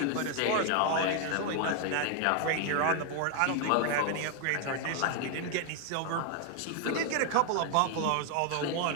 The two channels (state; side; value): different; both; correlation 0.00